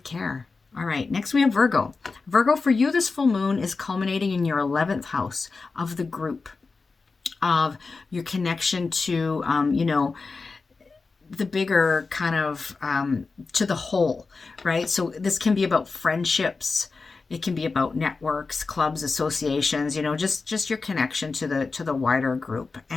care. All right, next we have Virgo. Virgo, for you, this full moon is culminating in your 11th house of the group, of your connection to, the bigger kind of, to the whole, right? So this can be about friendships. It can be about networks, clubs, associations, just your connection to the wider group.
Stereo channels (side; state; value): right; quieter; 4.2 dB